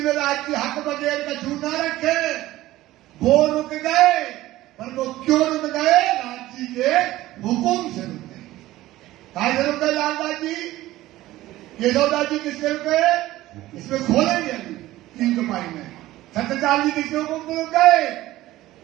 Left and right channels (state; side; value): quieter; left; 16.2 dB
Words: में राज की हक बगैर का छू ना रखे, वो रुक गए। पर वो क्यों रुक गए? राज जी के हुक्म से रुक गए। कहा से रुक गए लाला जी? केशवदास जी किससे रुक गए? इसमें खोलेंगे अभी 3 कमाई में। सत्यपाल जी किसके हुक्म से रुक गए?